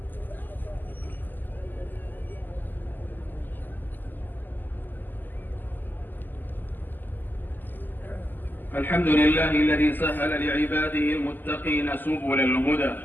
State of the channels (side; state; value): right; late; 0.088 ms